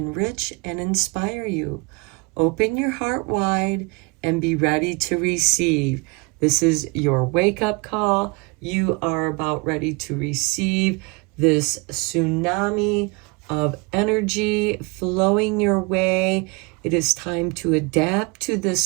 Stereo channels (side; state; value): left; quieter; 28.8 dB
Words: and inspire you. Open your heart wide and be ready to receive. This is your wake-up call. You are about ready to receive this tsunami of energy flowing your way. It is time to adapt to